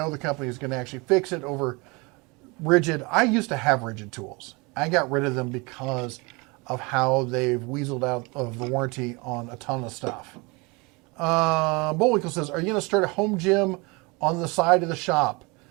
the company is going to actually fix it over Rigid. I used to have Rigid tools. I got rid of them because of how they've weaseled out of the warranty on a ton of stuff. Bullwinkle says, are you going to start a home gym on the side of the shop?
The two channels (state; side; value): quieter; left; 27.3 dB